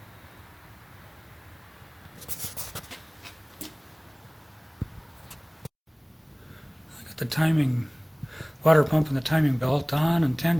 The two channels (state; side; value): identical; both; correlation 1.00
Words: got the timing, water pump and the timing belt on and